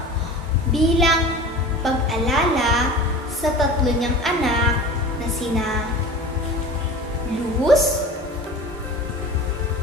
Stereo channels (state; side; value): normal; both; correlation 0.37